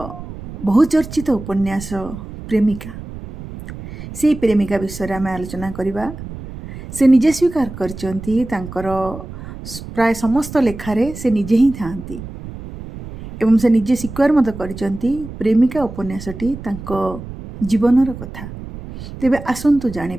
बहुचर्चित उपन्यास प्रेमिका से प्रेमिका विषय आम आलोचना करवा। से निजे स्वीकार करचंती तांकर प्राय समस्त लेखारे से निजे ही थांती एवं से निजे स्वीकार मत करचंती प्रेमिका उपन्यासटी तांको जीवनर कथा। तेबे आसंतु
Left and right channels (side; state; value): right; noise; rumble, 12 dB below the sound